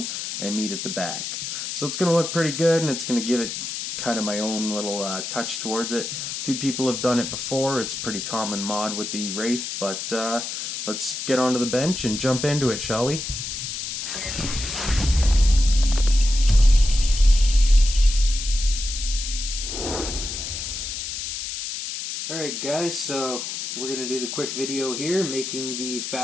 and meet at the back. So it's going to look pretty good, and it's going to give it kind of my own little touch towards it. A few people have done it before. It's a pretty common mod with the Wraith, but let's get onto the bench and jump into it, shall we? Alright guys, so we're going to do the quick video here, making the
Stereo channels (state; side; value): noise; left; hiss, 5 dB below the sound